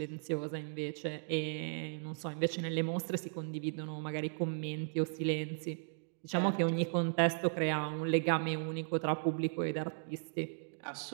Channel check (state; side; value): silent; left; digital silence